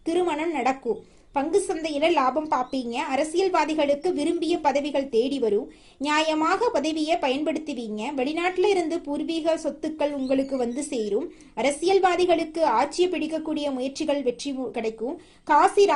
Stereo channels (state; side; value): identical; both; correlation 1.00